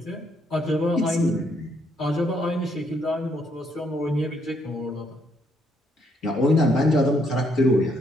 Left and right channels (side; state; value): both; normal; correlation 0.72